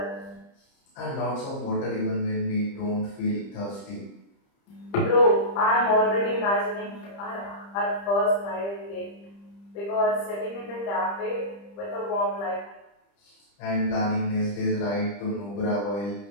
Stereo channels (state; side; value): late; right; 30 ms